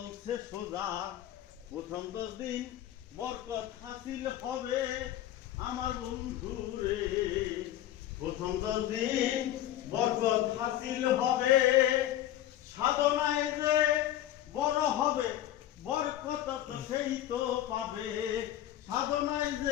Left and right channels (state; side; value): quieter; right; 12.7 dB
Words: সোজা। প্রথম 10 দিন বরকত হাসিল হবে আমার বন্ধুরে। প্রথম 10 দিন বরকত হাসিল হবে। সাধনায় যে বড় হবে বরকত তো সেই তো পাবে। সাধনায়